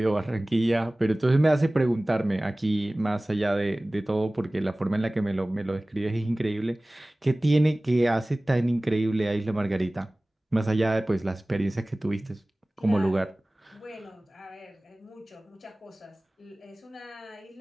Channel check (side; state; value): both; normal; correlation 0.98